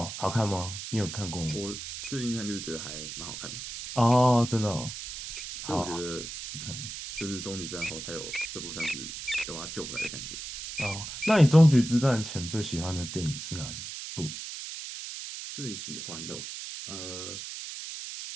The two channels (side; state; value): right; noise; hiss, 8 dB below the sound